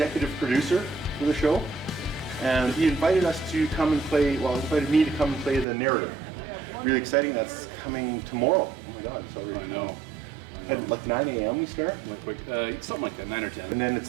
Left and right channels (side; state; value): left; drops out; at 5.7 s